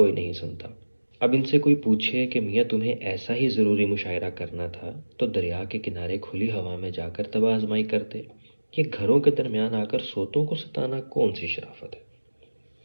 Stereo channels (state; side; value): inverted; both; correlation -1.00